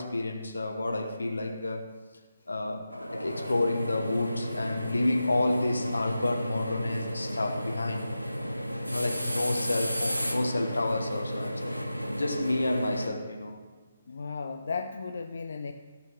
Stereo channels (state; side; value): inverted; both; correlation -0.92